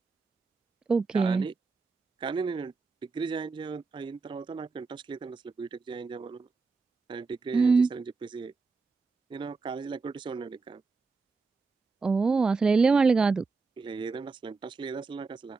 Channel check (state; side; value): quieter; left; 4.3 dB